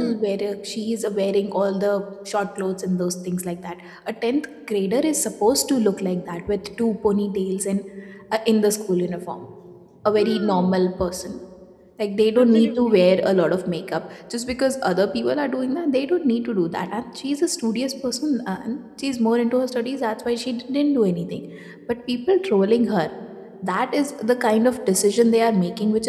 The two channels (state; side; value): identical; both; correlation 1.00